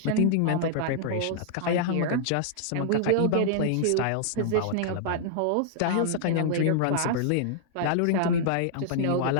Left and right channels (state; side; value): different; both; correlation -0.01